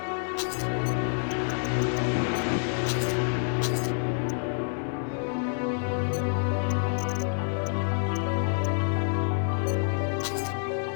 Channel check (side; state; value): right; silent; 57 dB below the other